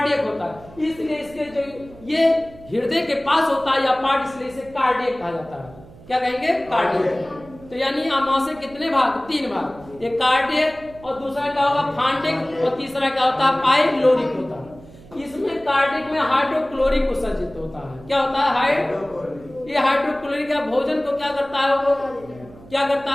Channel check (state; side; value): noise; right; hum, 21 dB below the sound